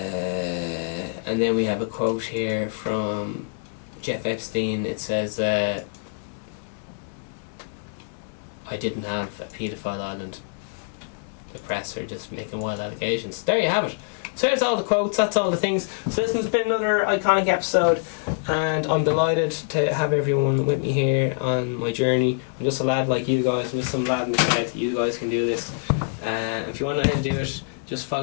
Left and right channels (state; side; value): silent; right; digital silence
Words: And then we have a quote here from Jeff Epstein. It says, I didn't have a paedophile island. The press are just making wild allegations. There you have it. So there's all the quotes, that's all the things. So this has been another iconic episode, and I'm delighted to have everyone with me here on my journey. I'm just a lad like you guys, I'm just some lad in the shed. You guys can do this. If you want to know how to do it, just